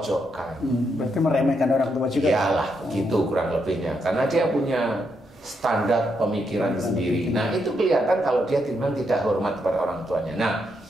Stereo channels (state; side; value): normal; both; correlation 0.79